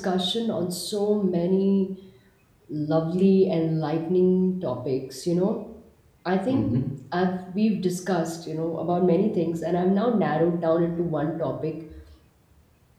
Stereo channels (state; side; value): identical; both; correlation 1.00